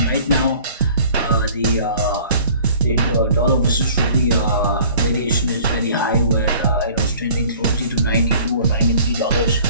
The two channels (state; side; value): inverted; both; correlation -0.51